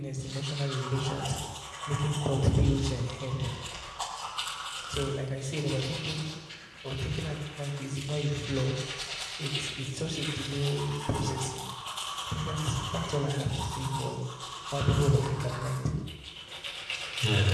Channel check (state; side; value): identical; both; correlation 1.00